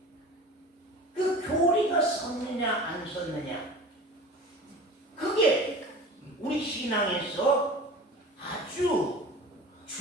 그 교리가 섰느냐 안 섰느냐, 그게 우리 신앙에서 아주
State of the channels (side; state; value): both; normal; correlation 0.38